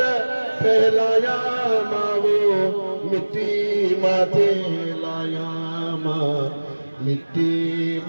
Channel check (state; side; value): inverted; both; correlation -1.00